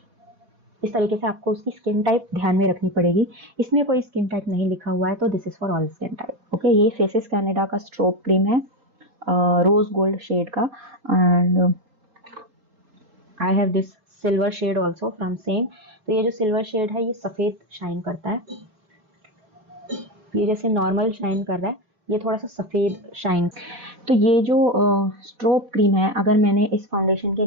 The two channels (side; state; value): left; late; 4.1 ms